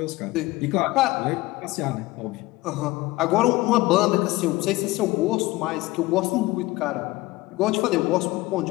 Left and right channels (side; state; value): right; quieter; 19.7 dB